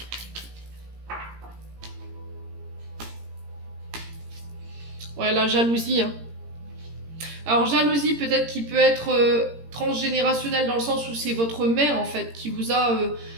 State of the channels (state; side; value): late; left; 17 ms